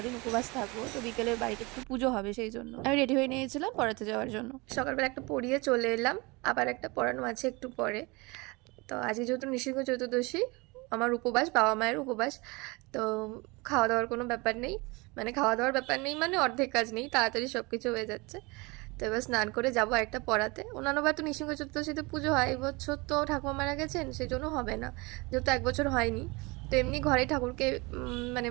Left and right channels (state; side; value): quieter; left; 25.8 dB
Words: উপবাস থাকবো, তো বিকেলের বাড়িতে একটু পুজো হবে, সেই জন্য আমি রেডি হয়ে নিয়েছিলাম পড়াতে যাওয়ার জন্য। সকালবেলা একটা পড়িয়ে চলে এলাম, আবার একটা পড়ানো আছে একটু পরে। তো আজকে যেহেতু নৃসিংহ চতুর্দশী, আমার উপবাস, বাবা মায়ের উপবাস, তো খাওয়া দাওয়ার কোনো ব্যাপার নেই, মানে খাওয়া দাওয়ার ব্যাপার নেই মানে অর্ধেক কাজ নেই, তাড়াতাড়ি সব কিছু হয়ে যাচ্ছে। তো এবার স্নান করে যাবো একটা পড়াতে। অন্যান্যবার তো নৃসিংহ চতুর্দশীতে পুজো হয়, এই বছর তো ঠাকুমা মারা গেছেন, সেই জন্য হবে না, যেহেতু এক বছর হয়নি। তো এমনি ঘরেই ঠাকুরকে মানে